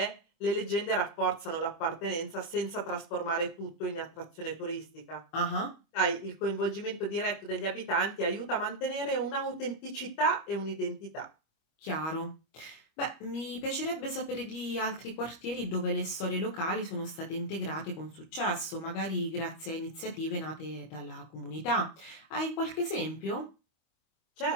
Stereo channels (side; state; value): right; late; 25 ms